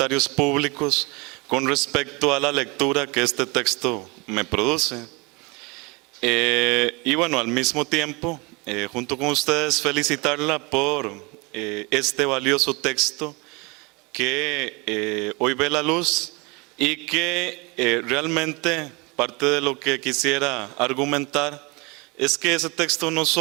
públicos con respecto a la lectura que este texto me produce. Y bueno, al mismo tiempo, junto con ustedes, felicitarla por este valioso texto que hoy ve la luz y que realmente parte de lo que quisiera argumentar es que ese texto no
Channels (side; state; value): left; quieter; 27.7 dB